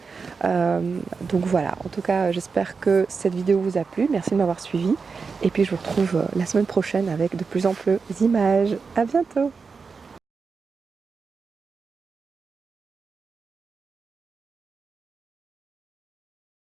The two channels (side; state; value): left; quieter; 5.0 dB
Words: Donc voilà, en tout cas, j'espère que cette vidéo vous a plu. Merci de m'avoir suivi. Et puis, je vous retrouve la semaine prochaine avec de plus en plus d'images. À bientôt!